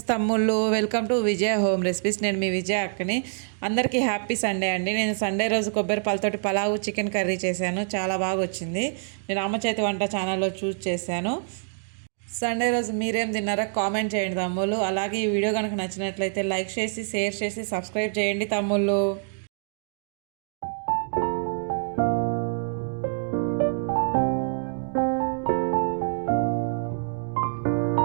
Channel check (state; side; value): silent; left; digital silence